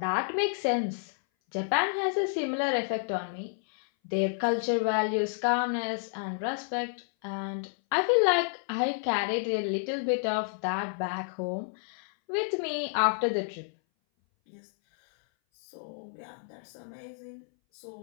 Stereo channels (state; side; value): silent; right; 58 dB below the other